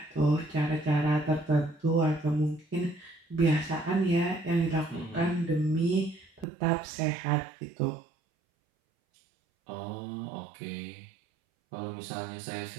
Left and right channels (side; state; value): left; drops out; at 6.5 s